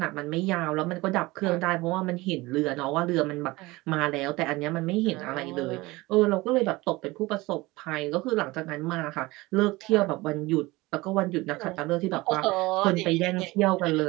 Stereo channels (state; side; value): quieter; left; 21.2 dB